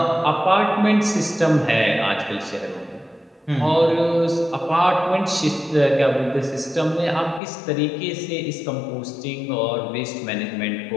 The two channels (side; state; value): right; drops out; at 7.4 s